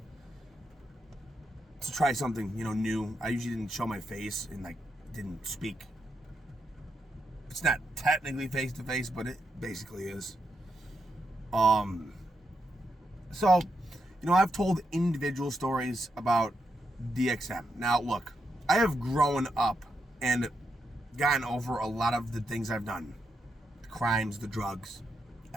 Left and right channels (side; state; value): both; normal; correlation 0.83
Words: to try something, new. I usually didn't show my face and, didn't speak. It's not technically face to face, but it basically is. So, I've told individual stories about DXM. Now, look, I have grown up and gotten over a lot of the things I've done. The crimes, the drugs,